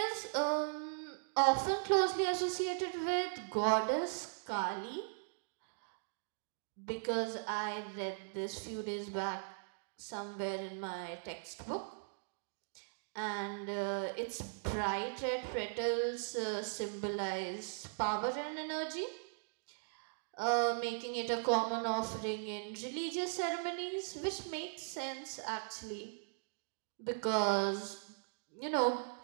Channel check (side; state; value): left; silent; digital silence